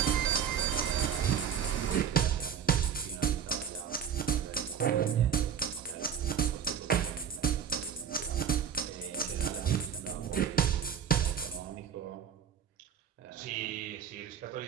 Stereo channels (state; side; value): quieter; left; 8.0 dB